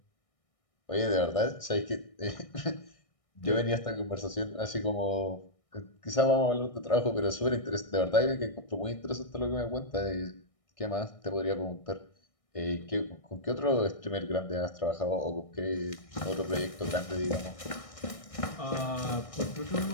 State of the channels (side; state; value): right; late; 1.6 ms